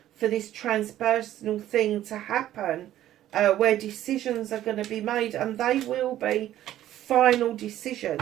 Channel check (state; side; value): quieter; left; 12.9 dB